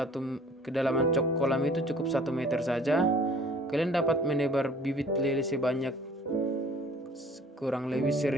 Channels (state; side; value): normal; both; correlation 0.51